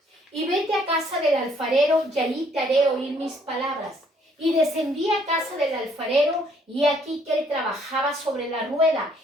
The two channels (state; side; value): normal; both; correlation 0.65